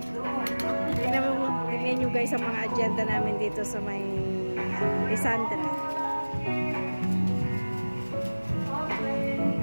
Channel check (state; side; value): inverted; both; correlation -1.00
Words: Tingnan nyo guys ang mga agenda namin dito sa may Lisandra.